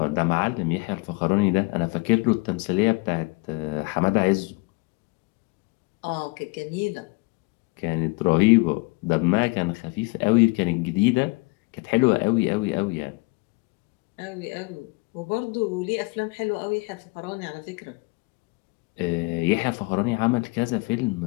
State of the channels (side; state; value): right; quieter; 26.8 dB